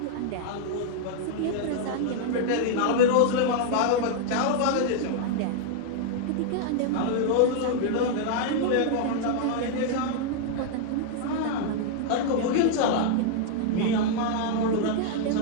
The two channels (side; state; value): both; different; correlation -0.01